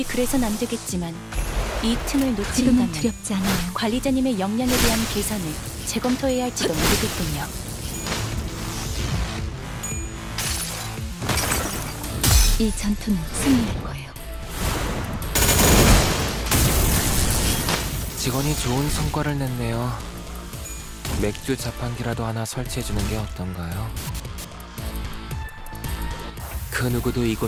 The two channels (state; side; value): identical; both; correlation 1.00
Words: 그래선 안 되겠지만 이 틈을 지금은 놓친다면 두렵지 않아요. 관리자님의 역량에 대한 계산을 재검토해야 할지도 모르겠군요. 이 전투는 승리할 거예요. 직원이 좋은 성과를 냈네요. 맥주 자판기라도 하나 설치해주는 게 어떤가요? 그 누구도